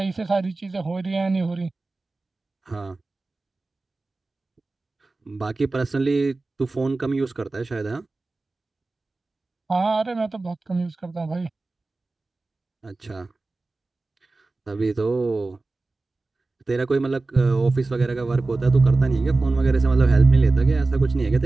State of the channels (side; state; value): left; quieter; 3.3 dB